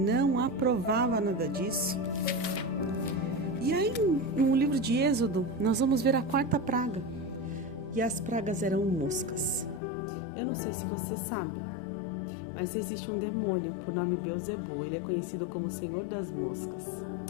aprovava nada disso. E aí no livro de Êxodo nós vamos ver a quarta praga. E as pragas eram moscas. Eu não sei se você sabe, mas existe um demônio por nome Beelzebul. Ele é conhecido como Senhor das Moscas.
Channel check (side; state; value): right; drops out; at 9.8 s